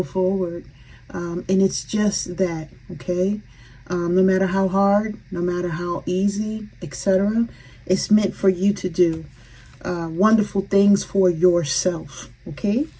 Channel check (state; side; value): identical; both; correlation 1.00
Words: forward. And it's just that, okay? No matter how hard, no matter how easy, etc., it's meant for you to do wonderful things for yourself, okay?